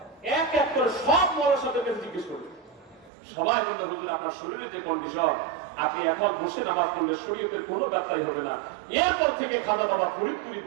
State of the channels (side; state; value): left; drops out; at 3.1 s